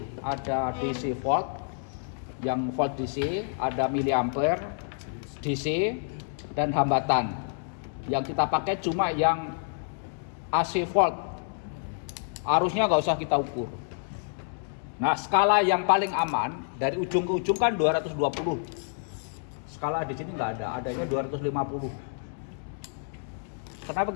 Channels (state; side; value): silent; right; digital silence